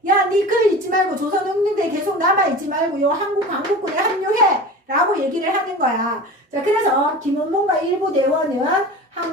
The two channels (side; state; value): both; normal; correlation 0.35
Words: 야, 니 그 있지 말고 조선혁명대에 계속 남아있지 말고 요 한국광복군에 합류해 라고 얘기를 하는 거야. 자, 그래서 김원봉과 일부 대원은